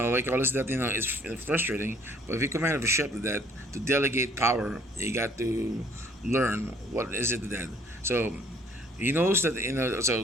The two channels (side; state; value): both; normal; correlation 0.60